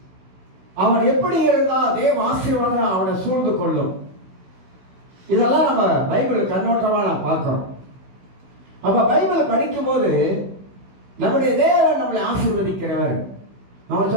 அவன் எப்படி இருந்தால் தேவ ஆசீர்வாதம் அவனை சூழ்ந்து கொள்ளும், இதெல்லாம் நம்ம பைபிள் கண்ணோட்டமாக நான் பார்க்கிறோம். அப்போ பைபிளை படிக்கும் போது நம்முடைய தேவன் நம்மளை ஆசீர்வதிக்கிறவர். நம்ம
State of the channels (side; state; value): left; late; 16 ms